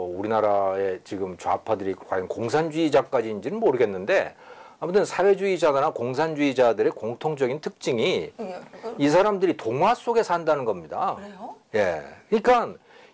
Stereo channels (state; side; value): identical; both; correlation 1.00